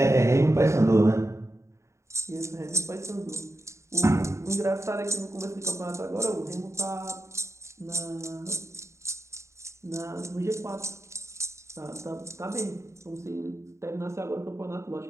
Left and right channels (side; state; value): left; late; 0.14 ms